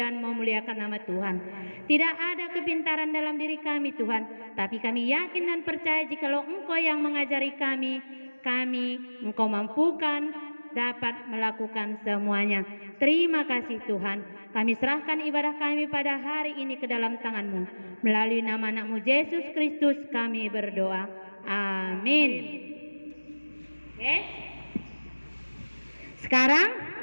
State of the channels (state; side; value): inverted; both; correlation -1.00